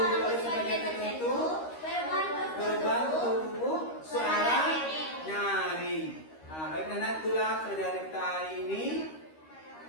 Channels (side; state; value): right; late; 13 ms